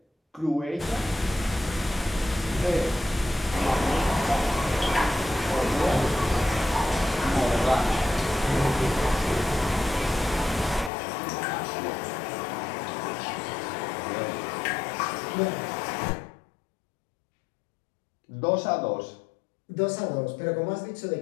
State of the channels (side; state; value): right; drops out; at 10.9 s